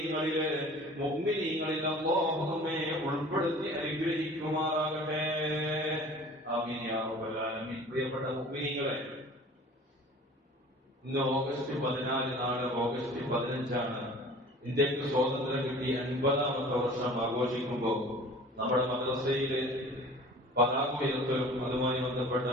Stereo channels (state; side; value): normal; both; correlation 0.44